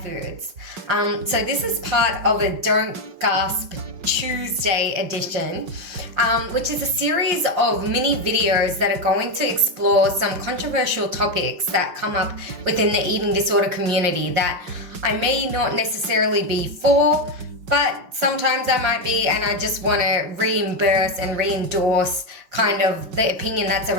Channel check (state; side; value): late; left; 5.7 ms